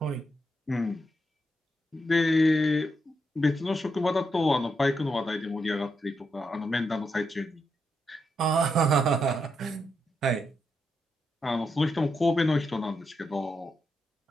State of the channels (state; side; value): normal; both; correlation 0.83